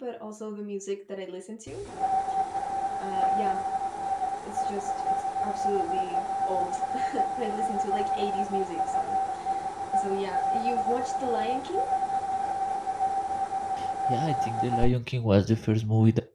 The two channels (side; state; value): both; identical; correlation 1.00